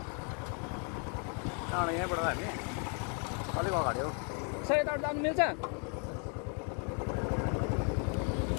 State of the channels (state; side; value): quieter; right; 38.9 dB